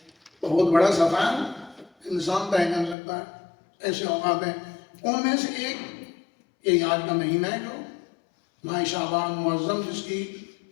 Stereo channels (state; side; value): drops out; right; at 3.0 s